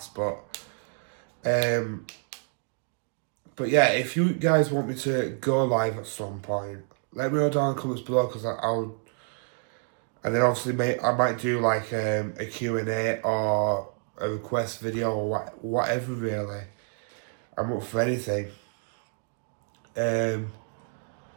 But yeah, if you guys want me to go live at some point, let me know down in the comments below, because I'll... And then obviously I might do like a Q&A or a request video or whatever really. I'm up for anything.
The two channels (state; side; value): silent; left; 59 dB below the other